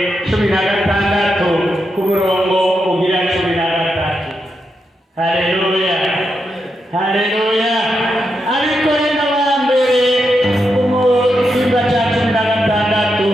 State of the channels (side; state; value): both; normal; correlation 0.85